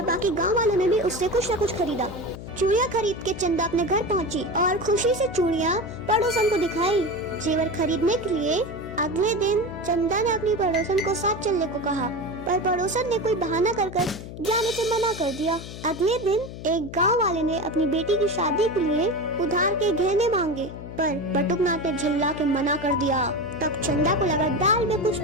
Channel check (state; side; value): noise; left; hum, 11 dB below the sound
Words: बाकी गांव वालों ने भी उससे कुछ न कुछ खरीदा। चूड़ियां खरीद के चंदा अपने घर पहुंची और खुशी से चूड़ियां पड़ोसन को दिखाई। जेवर खरीदने के लिए अगले दिन चंदा ने अपनी पड़ोसन को साथ चलने को कहा, पर पड़ोसन ने कोई बहाना कर जाने से मना कर दिया। अगले दिन एक गांव वाले ने अपनी बेटी की शादी के लिए उधार के गहने मांगे, पर बटुकनाथ ने झल्ला के मना कर दिया। तब चंदा को लगा, दाल में कुछ